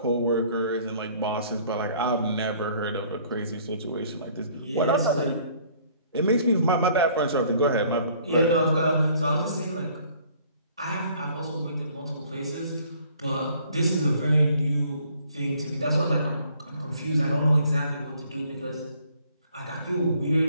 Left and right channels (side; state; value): both; inverted; correlation -0.59